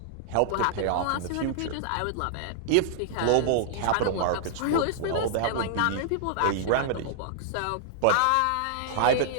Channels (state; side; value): different; both; correlation -0.01